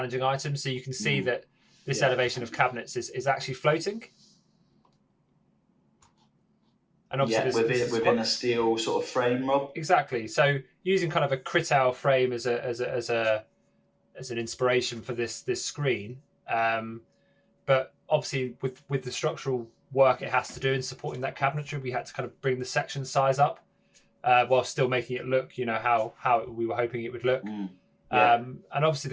items. So you can see that this elevation of cabinets is actually floating. And obviously within a steel sort of frame, Rob. Exactly. So using kind of a Critel frame as an inspiration for this screen, but obviously with the structural work it has to do in supporting that cabinetry, we had to kind of bring the section size up while still making it look, you know, how we were hoping it would look. And obviously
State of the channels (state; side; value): identical; both; correlation 1.00